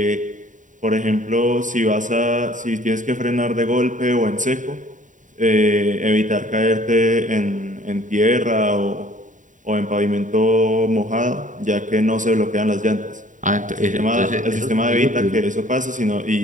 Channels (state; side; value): late; left; 0.37 ms